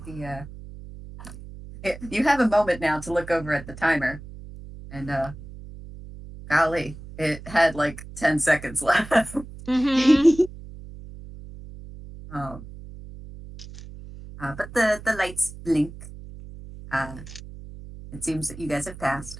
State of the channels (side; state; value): right; noise; hum, 15 dB below the sound